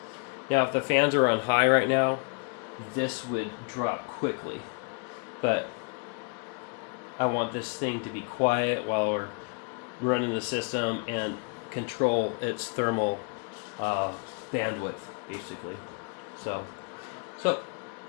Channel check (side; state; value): right; quieter; 36.0 dB